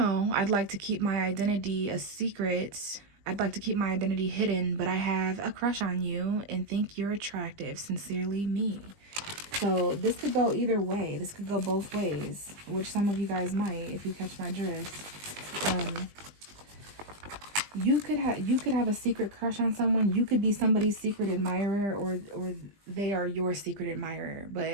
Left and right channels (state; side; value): late; left; 20 ms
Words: I'd like to keep my identity a secret. I'd like to keep my identity hidden, but I have a crush on you and think you're attractive. Sincerely, me. So this could go either way. This could go both ways, which some of you guys might, if you catch my drift. You could have a secret crush on someone. You could be somebody's secret admirer, or they are your secret admirer.